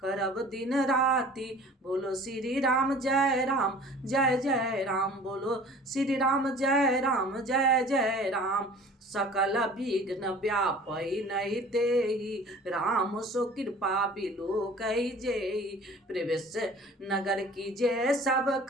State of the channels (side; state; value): both; normal; correlation 0.46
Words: करब दिन राति। बोलो श्री राम जय राम जय जय राम, बोलो श्री राम जय राम जय जय राम। सकल विघ्न व्यापै नहीं तेहि, राम सो कृपा बिलो कही जेहि। प्रवेश नगर की जय सब